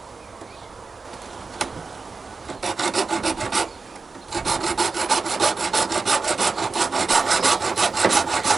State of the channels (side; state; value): left; quieter; 4.4 dB